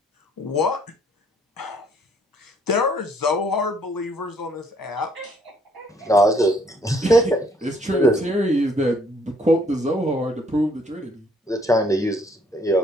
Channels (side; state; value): both; normal; correlation 0.65